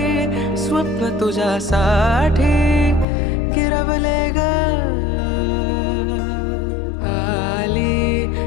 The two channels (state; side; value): drops out; right; at 3.1 s